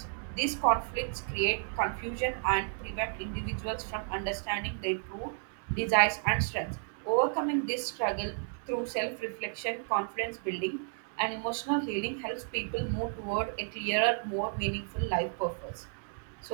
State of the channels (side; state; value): left; silent; 56 dB below the other